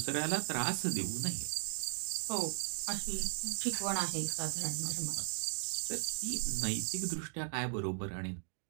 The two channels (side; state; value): left; silent; digital silence